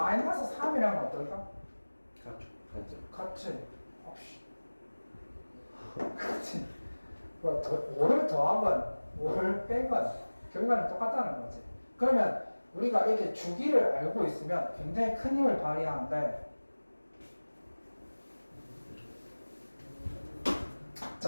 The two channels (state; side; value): inverted; both; correlation -1.00